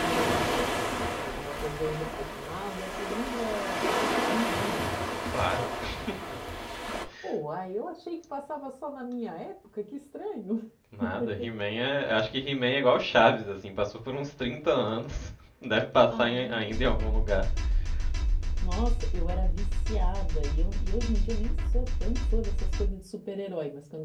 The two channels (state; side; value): identical; both; correlation 1.00